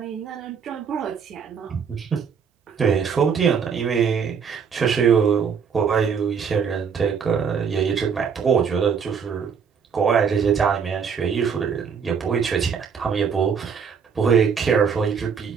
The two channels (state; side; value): quieter; left; 6.6 dB